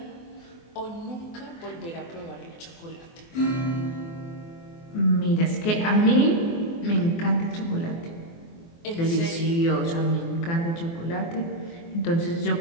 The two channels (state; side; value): late; right; 24 ms